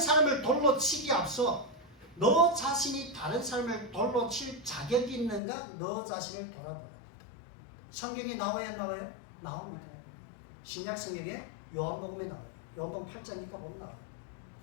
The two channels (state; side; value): drops out; right; at 5.4 s